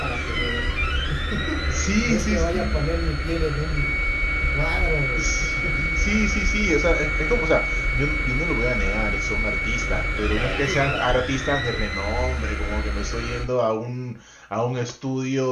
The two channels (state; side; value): identical; both; correlation 1.00